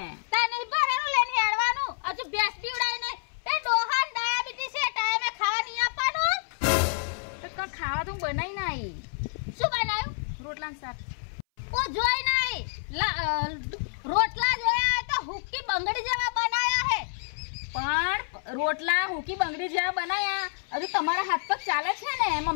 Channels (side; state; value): right; silent; 59 dB below the other